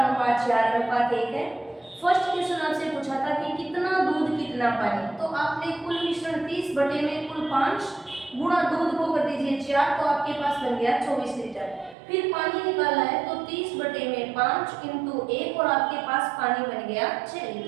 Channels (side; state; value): left; drops out; at 12.0 s